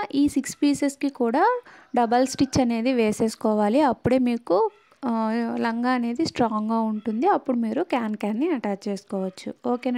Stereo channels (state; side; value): identical; both; correlation 1.00